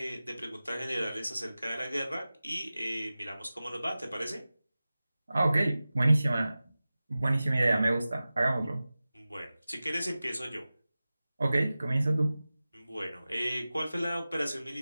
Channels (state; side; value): inverted; both; correlation -0.96